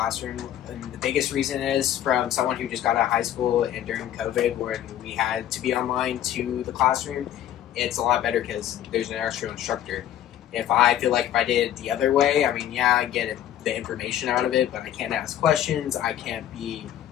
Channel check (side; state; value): right; quieter; 11.5 dB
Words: And the biggest reason is from someone who just got out of high school and during COVID when we had to be online to the classroom, it's a lot better because there's an actual instructor. If I feel like if I did it the other way, I mean, yeah, I get the information out of it, but I can't ask questions. I can't be,